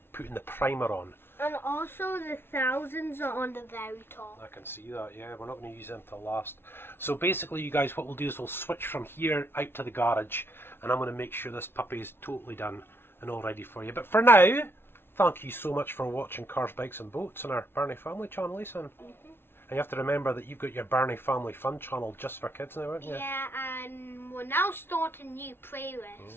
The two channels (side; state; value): right; late; 0.11 ms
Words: putting the primer on. And also the thousands are on the very top. I can see that, yeah. We're not going to use them till last. So basically, you guys, what we'll do is we'll switch from here out to the garage, and I'm going to make sure this puppy is totally done and all ready for you. But for now, thank you so much for watching Cars, Bikes and Boats on our Birnie Family channel, Lisa. And you have to remember that you've got your Birnie Family Fun channel just for kids now, aren't you? Yeah, and we're now starting new